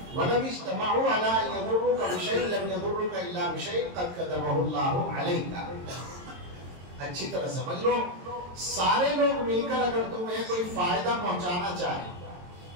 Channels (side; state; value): left; late; 22 ms